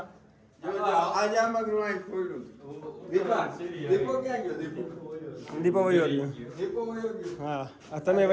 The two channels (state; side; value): identical; both; correlation 1.00